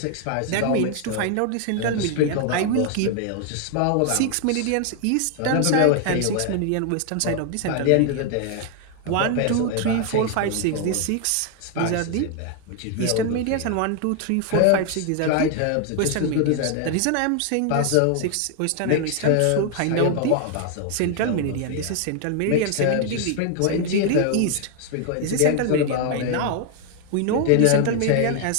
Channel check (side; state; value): both; different; correlation 0.00